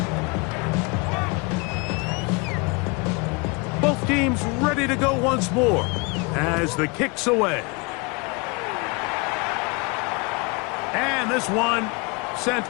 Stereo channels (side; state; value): right; quieter; 29.0 dB